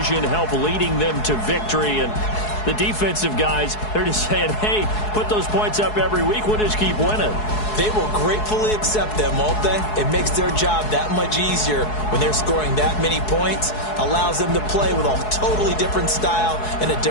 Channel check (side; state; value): right; late; 4.7 ms